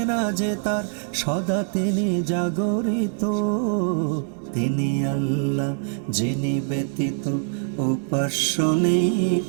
না যে তার, সদা তিনি জাগরিত। তিনি আল্লাহ যিনি ব্যতীত উপাস্য নেই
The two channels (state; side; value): silent; left; digital silence